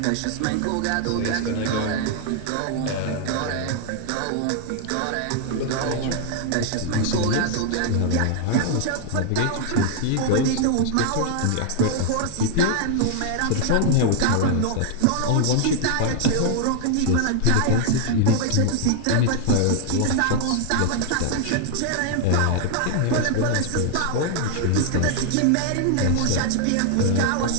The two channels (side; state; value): both; different; correlation 0.00